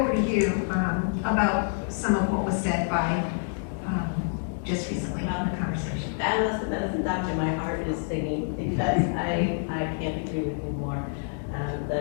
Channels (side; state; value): right; silent; digital silence